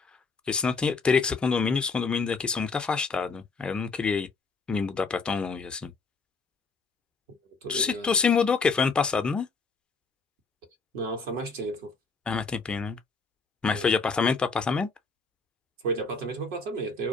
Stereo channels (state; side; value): quieter; right; 4.3 dB